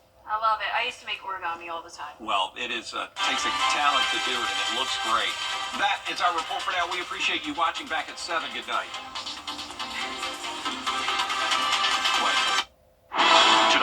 I love it. I used to make origami all the time. Well, it is takes a talent to do it, and it looks great. That is our report for now. We appreciate you watching. Back at 7. Good night.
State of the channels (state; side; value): identical; both; correlation 1.00